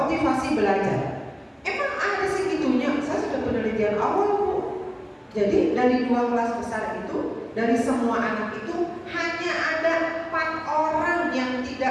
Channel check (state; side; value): identical; both; correlation 1.00